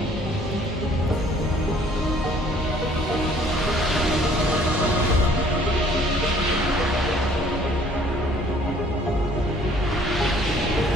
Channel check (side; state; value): both; normal; correlation 0.58